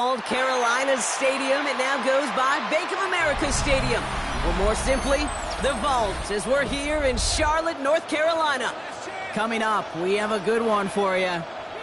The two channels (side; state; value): both; identical; correlation 1.00